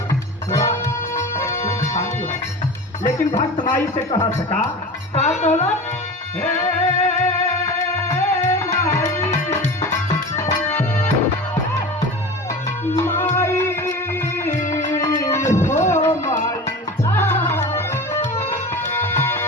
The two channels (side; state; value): both; normal; correlation 0.32